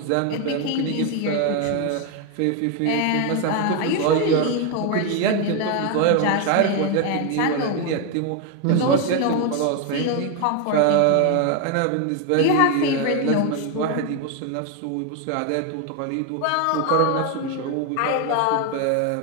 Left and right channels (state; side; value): different; both; correlation 0.01